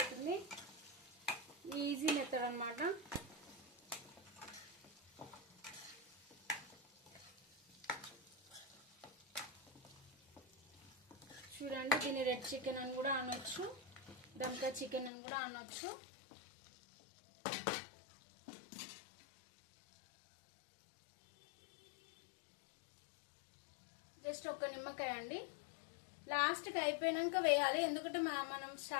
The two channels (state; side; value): drops out; right; at 15.1 s